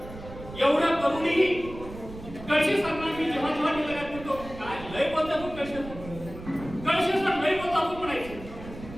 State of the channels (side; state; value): right; noise; rumble, 14 dB below the sound